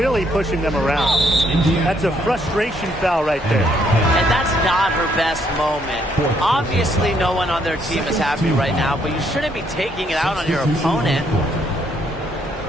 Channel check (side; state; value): both; normal; correlation 0.71